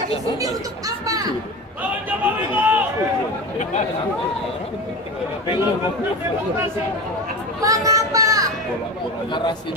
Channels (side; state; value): both; normal; correlation 0.27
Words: di sini untuk apa? Mengapa?